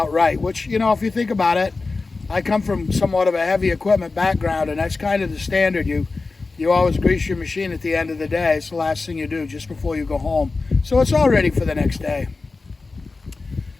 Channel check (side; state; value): right; quieter; 3.8 dB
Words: right, which, you know, if you think about it, I come from somewhat of a heavy equipment background, and that's kind of the standard. You always grease your machine at the end of the day. It's the last thing you do just before you go home. So it's all ready for the next day.